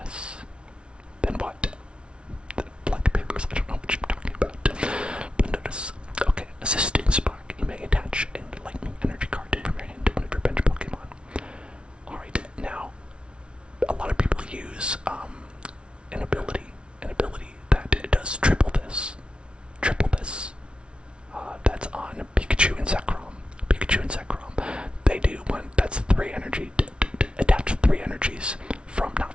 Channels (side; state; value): left; late; 0.058 ms